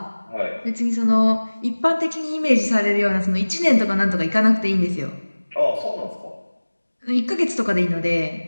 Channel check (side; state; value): both; inverted; correlation -1.00